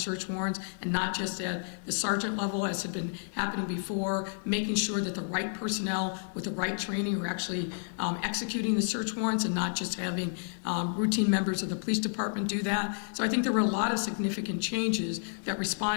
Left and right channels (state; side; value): silent; right; digital silence